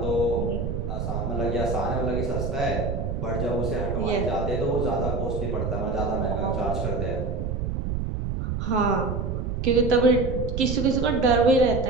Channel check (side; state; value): right; noise; rumble, 3 dB below the sound